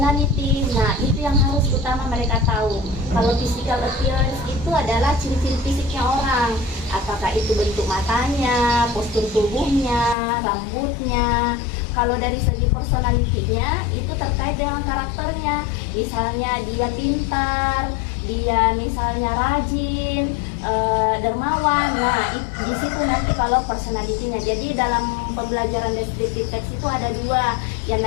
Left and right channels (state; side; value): drops out; right; at 10.2 s